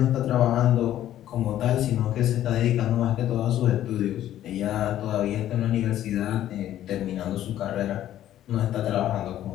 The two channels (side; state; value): right; quieter; 12.3 dB